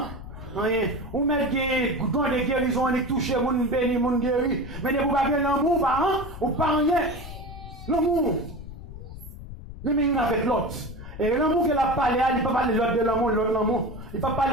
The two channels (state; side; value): noise; left; rumble, 12 dB below the sound